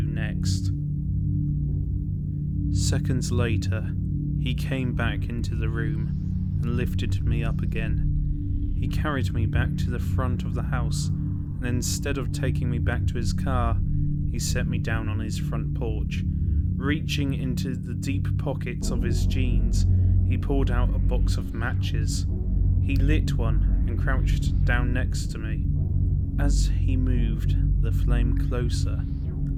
next. Seconds later, he came back into the room and lifted me up again. He carried me back to the front of the house, and instead of taking me back to his car, he set me down on his front porch. Reaching into the deep pockets of his jeans, he pulled out a box of matches. He lit one and crouched down next to me. As he moved the flame closer,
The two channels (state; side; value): identical; both; correlation 1.00